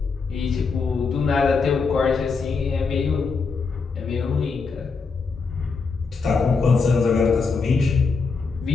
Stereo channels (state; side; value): quieter; right; 4.7 dB